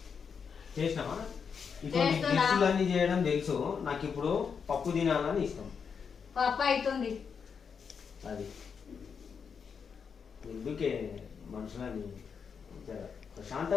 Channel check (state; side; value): quieter; right; 6.3 dB